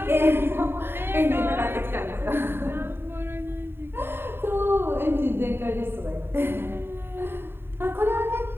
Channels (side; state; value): left; late; 0.11 ms